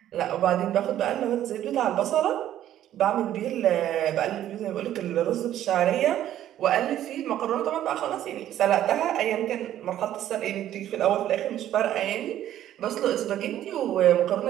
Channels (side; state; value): left; quieter; 12.0 dB